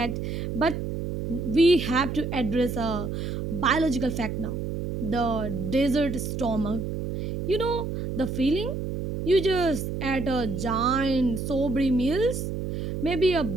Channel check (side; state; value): right; noise; hum, 4 dB below the sound